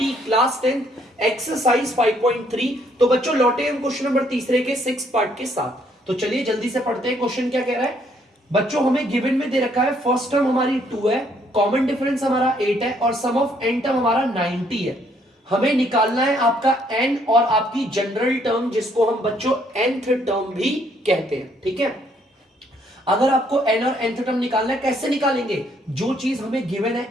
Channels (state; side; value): normal; both; correlation 0.68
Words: class 10 exercise 5.3। तो बच्चों लौटे हम क्वेश्चन नंबर तीसरे के 6 पार्ट के साथ। तो चलिए जल्दी से पढ़ते हैं। क्वेश्चन क्या कह रहा है बच्चों, हमें गिवन में दे रखा है फर्स्ट टर्म हमारी 2 है, कॉमन डिफरेंस हमारा 8 है और सम ऑफ n टर्म हमारा 90 है। हमें निकालना है आपका n और आपकी जनरल टर्म, जिसको हम बच्चों nth टर्म भी कहते हैं। ठीक है, अगर आपको n और nth टर्म निकालना है, कैसे निकालेंगे? जो चीज हमें गिवन है